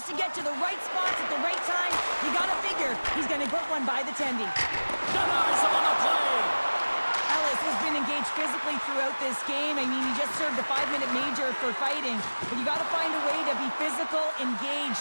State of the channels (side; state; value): both; inverted; correlation -1.00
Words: to get to the right spots at the right time, you got to figure he's going to put one by the tendy. Denies him on the play. Ellis has been engaged physically throughout this game. I mean, he just served a 5-minute major for fighting, but you got to find a way to be physical,